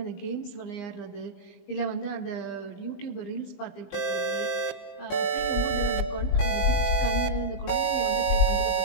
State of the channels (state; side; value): late; right; 20 ms